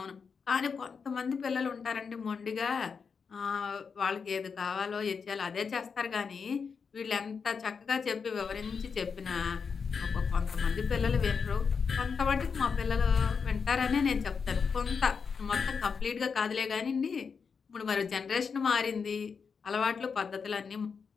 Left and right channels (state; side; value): quieter; right; 5.8 dB